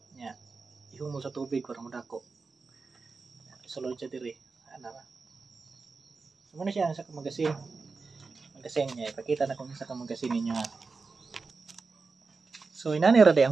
nya ihumol sa tubig para madako. Sulod siya diri ana ra. So muna siya sa magasin niya ipakita na kung sa magasin niya. So inani ra day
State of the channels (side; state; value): left; quieter; 4.3 dB